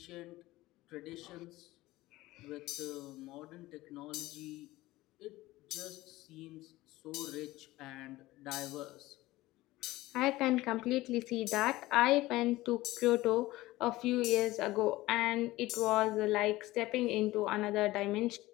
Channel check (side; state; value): right; quieter; 18.1 dB